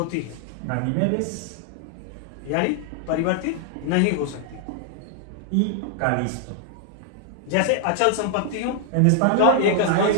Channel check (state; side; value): different; both; correlation 0.00